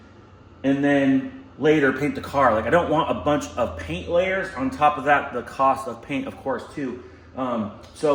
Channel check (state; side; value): identical; both; correlation 1.00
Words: and then later paint the car. Like I don't want a bunch of paint layers. On top of that, the cost of paint, of course, too.